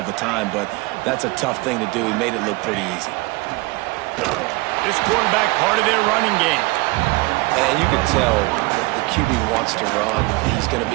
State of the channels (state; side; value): quieter; left; 23.7 dB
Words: the time, but that's a tough thing to do. He made it look pretty easy. This quarterback part of their running game. And you can tell the QB wants to run. He's going to